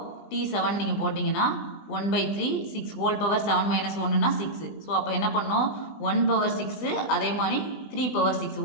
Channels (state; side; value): late; right; 20 ms